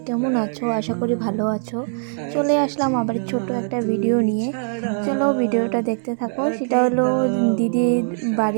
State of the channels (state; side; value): silent; left; digital silence